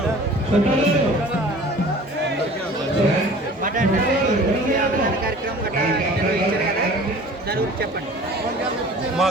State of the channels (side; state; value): both; normal; correlation 0.45